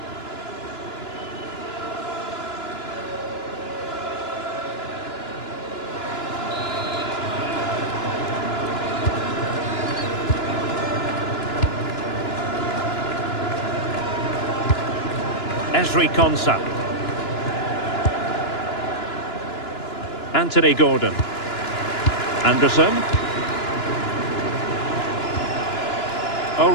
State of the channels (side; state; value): right; late; 2.9 ms